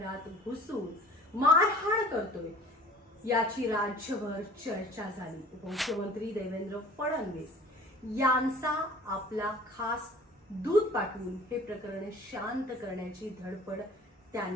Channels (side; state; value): both; normal; correlation 0.47